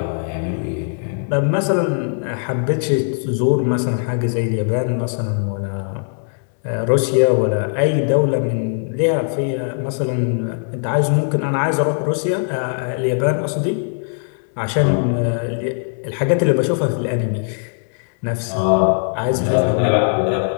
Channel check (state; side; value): silent; right; 66 dB below the other